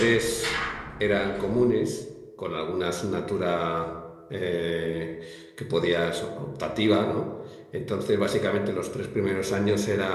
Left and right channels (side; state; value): both; identical; correlation 1.00